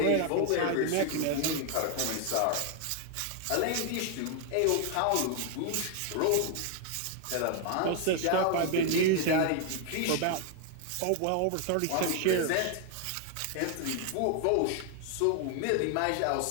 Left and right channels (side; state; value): both; different; correlation 0.00